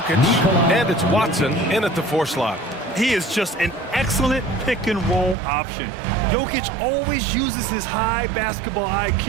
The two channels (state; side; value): drops out; left; at 5.4 s